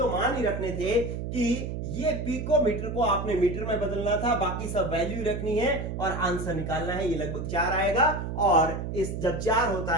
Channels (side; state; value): right; noise; hum, 5 dB below the sound